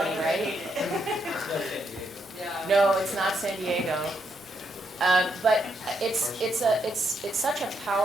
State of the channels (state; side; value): normal; both; correlation 0.78